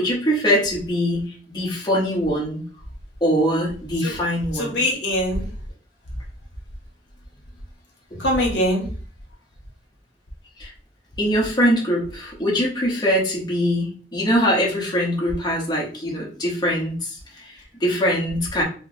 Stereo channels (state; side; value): normal; both; correlation 0.44